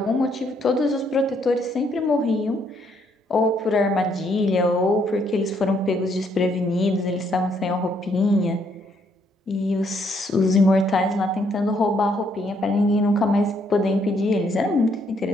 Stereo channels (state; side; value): normal; both; correlation 0.71